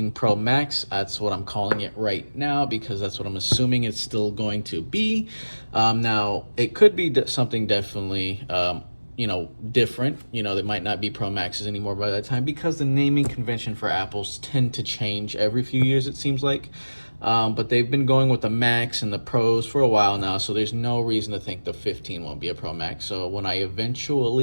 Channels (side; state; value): both; inverted; correlation -1.00